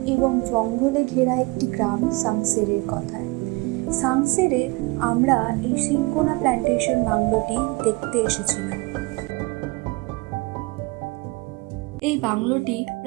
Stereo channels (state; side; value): quieter; left; 25.1 dB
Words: এবং জঙ্গলে ঘেরা একটি গ্রাম সাংসেরের কথায়। সাংসেরে আমরা এই সিনকোনা প্ল্যান্টেশন বাংলোটি দেখতে এসেছিলাম। এই বাংলোটি